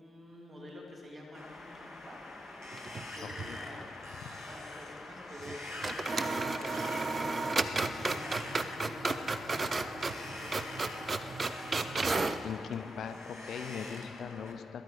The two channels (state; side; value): normal; both; correlation 0.86